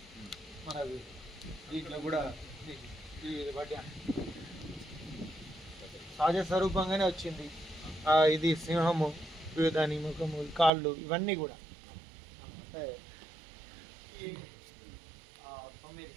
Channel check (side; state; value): left; drops out; at 10.7 s